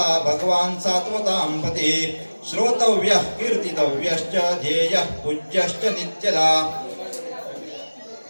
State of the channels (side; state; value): both; inverted; correlation -1.00